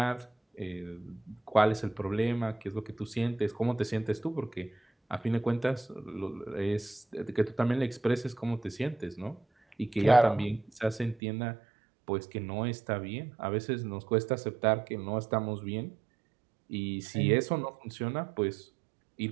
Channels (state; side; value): drops out; left; at 11.2 s